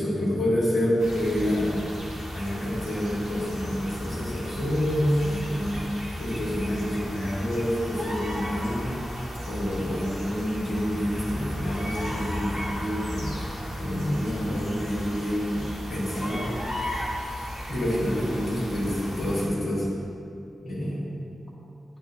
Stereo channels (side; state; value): both; normal; correlation 0.92